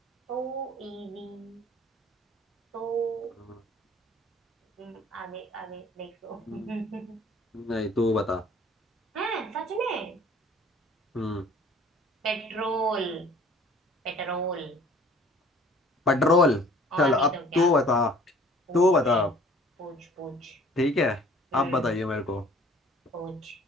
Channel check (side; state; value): both; normal; correlation 0.52